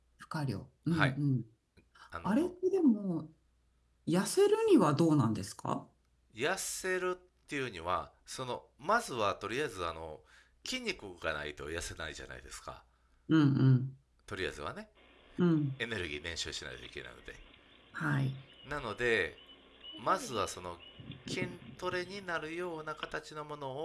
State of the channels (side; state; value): both; identical; correlation 1.00